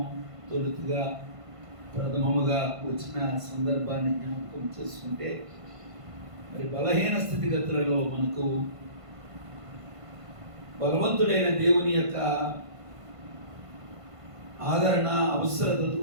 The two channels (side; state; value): left; late; 1.5 ms